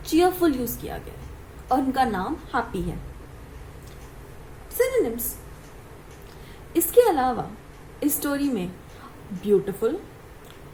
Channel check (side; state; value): both; identical; correlation 1.00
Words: चीयरफुल यूज किया गया है और उनका नाम हैप्पी है। सिनोनिम्स। इसके अलावा इस स्टोरी में beautiful,